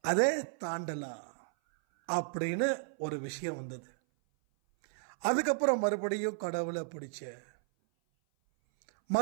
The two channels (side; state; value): left; silent; 55 dB below the other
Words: அப்படின்னு ஒரு விஷயம் வந்தது. அதுக்கப்புறம் மறுபடியும் கடவுளை பிடிச்ச,